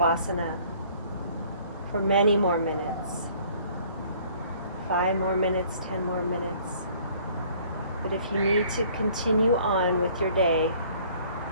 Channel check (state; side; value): inverted; both; correlation -0.57